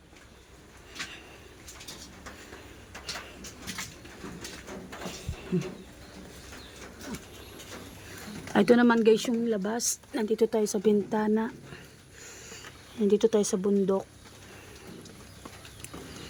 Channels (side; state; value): both; identical; correlation 1.00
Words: Ito naman guys yung labas. Nandito tayo sa bintana. Nandito tayo sa bundok.